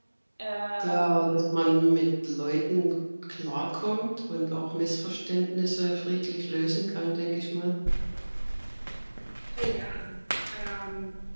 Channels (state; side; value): inverted; both; correlation -1.00